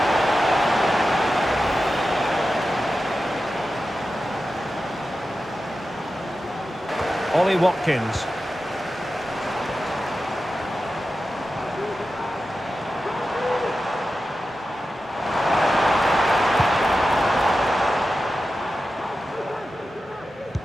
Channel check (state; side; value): normal; both; correlation 0.92